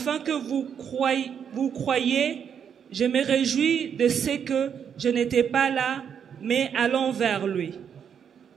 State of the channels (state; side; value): quieter; left; 7.8 dB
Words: que vous croyiez, je me réjouis de ce que je n'étais pas là, mais allons vers lui.